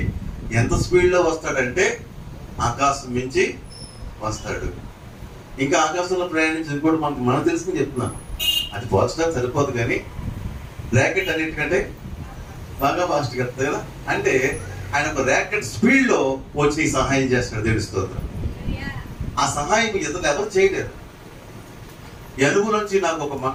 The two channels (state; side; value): identical; both; correlation 1.00